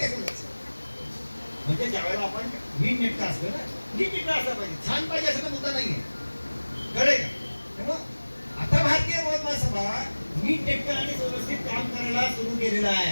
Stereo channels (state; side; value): inverted; both; correlation -1.00